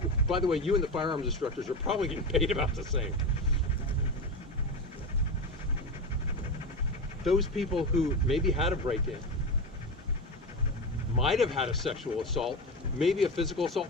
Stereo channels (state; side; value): normal; both; correlation 0.21